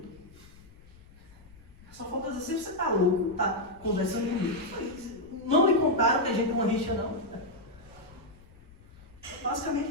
Só falta dizer, você está louco, está conversando comigo. Não me contaram que a gente é uma rixa, não. Basicamente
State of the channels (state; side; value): noise; left; rumble, 23 dB below the sound